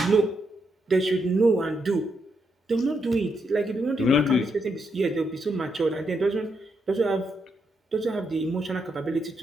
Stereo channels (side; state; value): both; normal; correlation 0.80